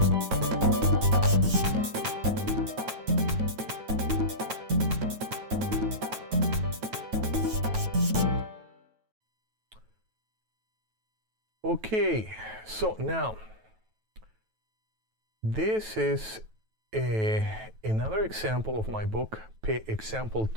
Okay, so now this is another example of my book, example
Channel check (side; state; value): left; late; 9.2 ms